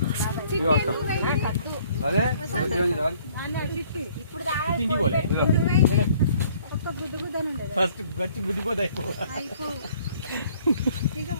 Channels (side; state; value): both; inverted; correlation -0.59